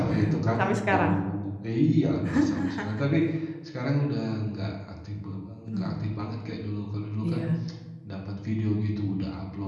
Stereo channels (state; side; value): identical; both; correlation 1.00